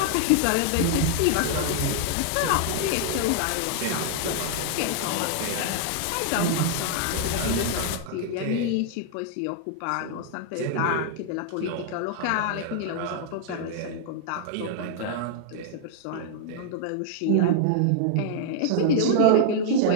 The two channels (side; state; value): both; different; correlation -0.01